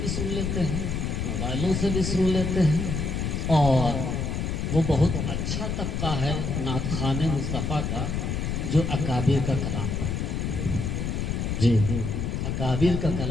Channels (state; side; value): noise; left; rumble, 1 dB below the sound